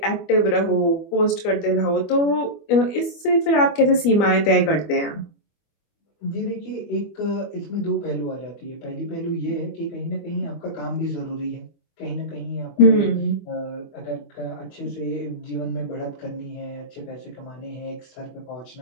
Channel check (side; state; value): right; late; 25 ms